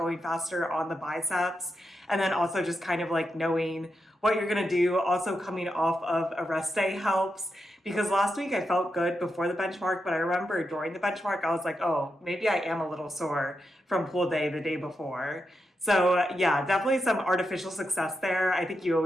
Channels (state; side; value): normal; both; correlation 0.86